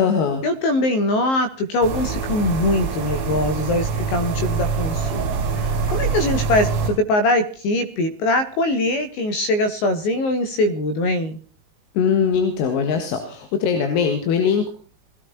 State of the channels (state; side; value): late; right; 19 ms